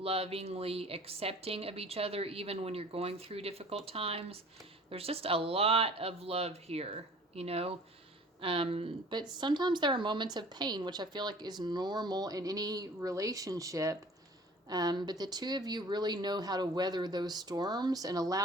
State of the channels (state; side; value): normal; both; correlation 0.47